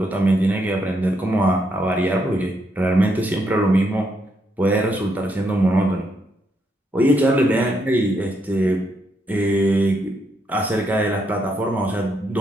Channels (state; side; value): normal; both; correlation 0.77